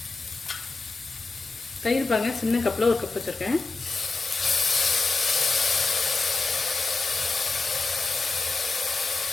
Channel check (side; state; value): right; quieter; 3.8 dB